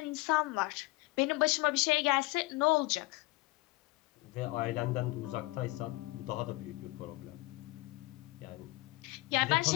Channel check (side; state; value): right; quieter; 21.8 dB